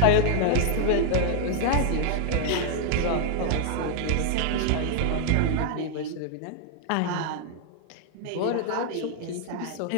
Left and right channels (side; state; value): both; different; correlation 0.00